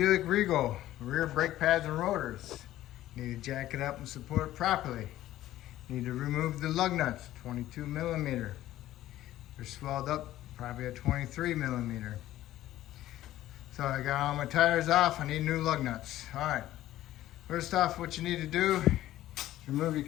Regal, rear brake pads and rotors. Need to jack it up and support it properly. Need to remove the lug nuts, 22 millimeter. They're swelled up, probably a 23 millimeter. So I got all my tires off, I need new lug nuts. All right, first off, what you need to do is remove your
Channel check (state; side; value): quieter; right; 14.2 dB